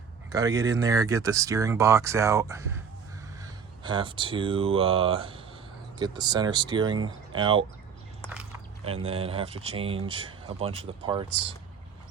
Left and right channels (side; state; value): left; quieter; 6.5 dB